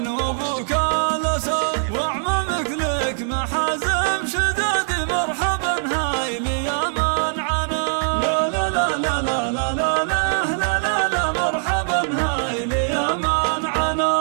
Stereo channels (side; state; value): left; silent; 65 dB below the other